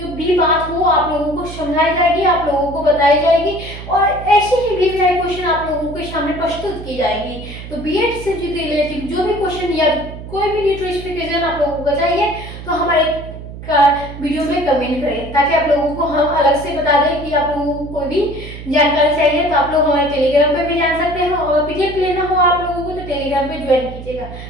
भी बात हो आप लोगों को समझाई जाएगी, आप लोगों को बताई जाएगी और ऐसे ही भी क्वेश्चन आप लोगों के सामने प्रस्तुत की जाएगी। तो बीएड से रिलेटेड जो भी क्वेश्चन या कोई भी नोटिफिकेशन आप लोगों को चाहिए, तो हमारे वीडियो में कमेंट करें, ताकि आप लोगों को हम अलग से बता दें कि आप लोगों को कोई भी जानकारी चाहिए तो आप लोग हमारे टेलीग्राम पे भी जान सकते हैं और पीडीएफ लेना हो आप लोगों को तो टेलीग्राम पे ज्वाइन कीजिएगा।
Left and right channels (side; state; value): right; noise; hum, 12 dB below the sound